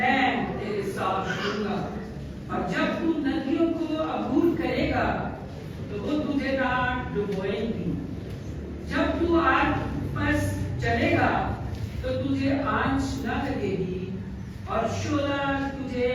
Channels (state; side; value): identical; both; correlation 1.00